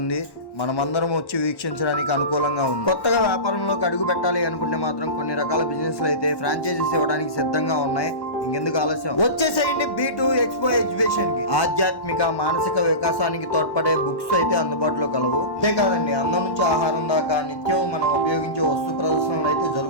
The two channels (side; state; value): right; late; 1.1 ms